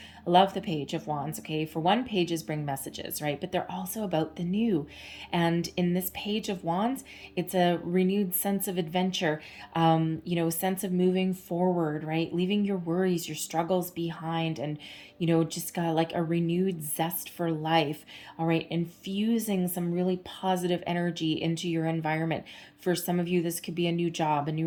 I love the Page of Wands. Okay, for one, pages bring messages, right? But they're also about the new. And in this Page of Wands, it's a renewed sense of adventure, sense of moving forward, right? Leaving your worries, your struggles behind, and just got like a renewed zest for life. All right, infusing some really positive energy into your environment. For some of you, this could be a new job, a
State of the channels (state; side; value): identical; both; correlation 1.00